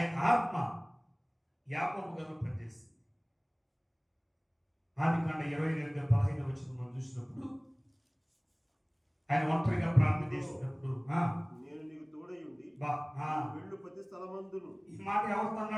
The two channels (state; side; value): identical; both; correlation 1.00